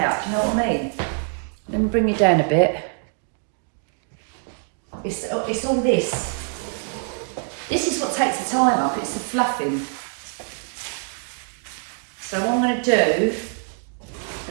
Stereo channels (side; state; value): left; silent; 57 dB below the other